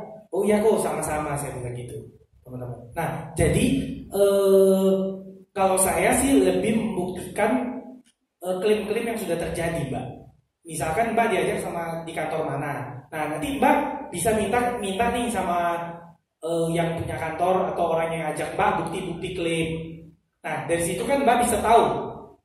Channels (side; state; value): both; identical; correlation 1.00